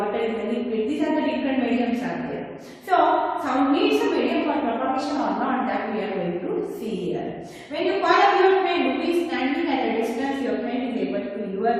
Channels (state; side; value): identical; both; correlation 1.00